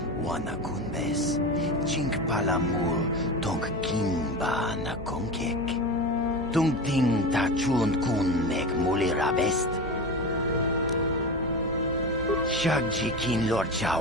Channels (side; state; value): both; normal; correlation 0.25